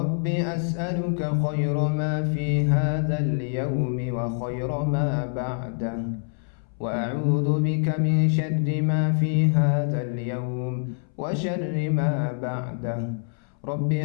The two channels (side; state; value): right; silent; 61 dB below the other